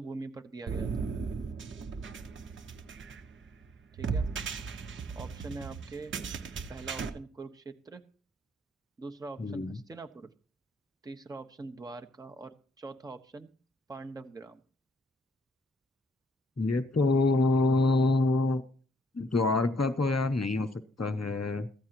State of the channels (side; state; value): both; normal; correlation 0.68